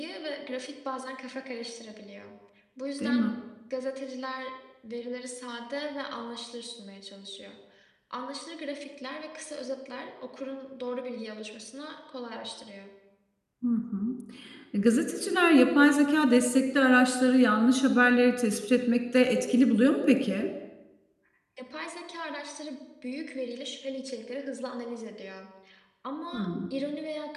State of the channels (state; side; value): identical; both; correlation 1.00